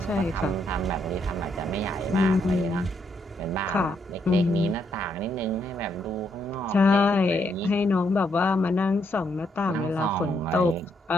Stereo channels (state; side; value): normal; both; correlation 0.75